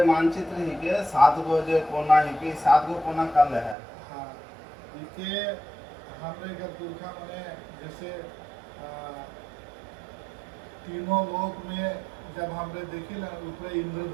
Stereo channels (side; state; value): left; drops out; at 3.8 s